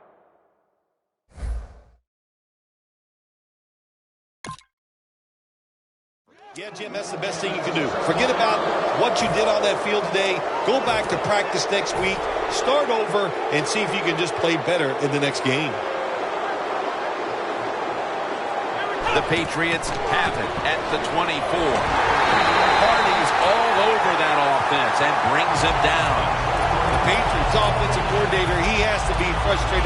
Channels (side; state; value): both; identical; correlation 1.00